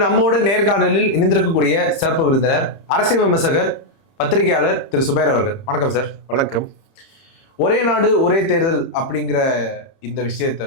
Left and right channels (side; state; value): right; late; 30 ms